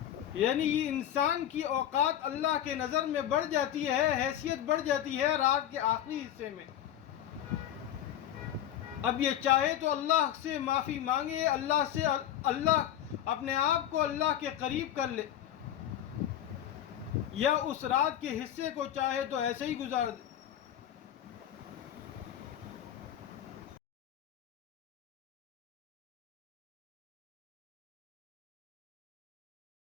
یعنی یہ انسان کی اوقات اللہ کے نظر میں بڑھ جاتی ہے، حیثیت بڑھ جاتی ہے رات کے آخری حصے میں۔ اب یہ چاہے تو اللہ سے معافی مانگے، اللہ اپنے آپ کو اللہ کے قریب کر لے، یا اس رات کے حصے کو چاہے تو ایسے ہی گزار دے۔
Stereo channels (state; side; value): quieter; right; 11.1 dB